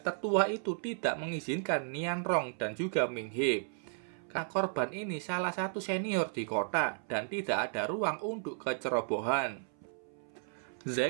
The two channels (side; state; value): left; silent; 55 dB below the other